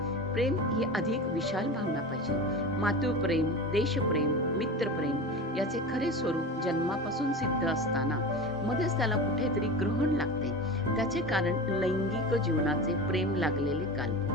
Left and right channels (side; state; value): both; normal; correlation 0.29